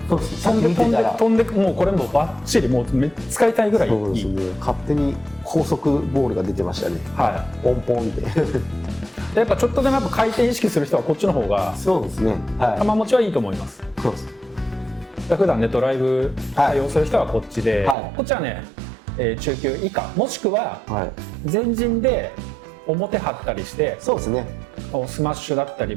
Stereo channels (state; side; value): drops out; left; at 17.9 s